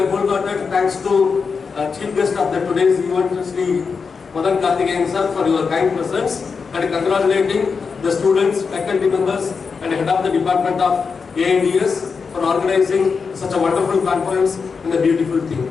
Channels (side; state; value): right; quieter; 5.3 dB